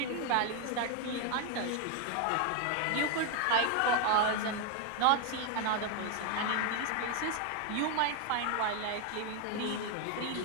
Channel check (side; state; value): both; different; correlation 0.00